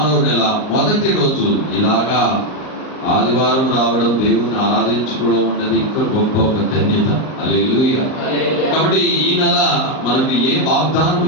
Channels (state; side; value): late; right; 38 ms